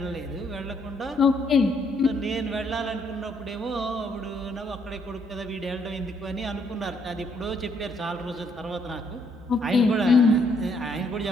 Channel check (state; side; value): normal; both; correlation 0.70